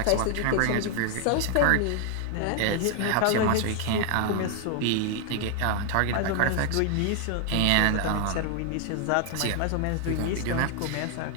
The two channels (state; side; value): different; both; correlation 0.00